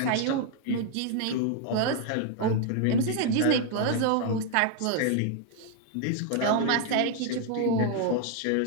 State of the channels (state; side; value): different; both; correlation 0.00